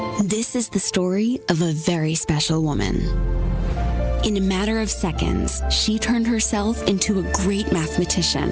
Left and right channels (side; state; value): both; identical; correlation 1.00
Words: This is the story of a very special woman. In a matter of seconds, she turned herself into a great mathematician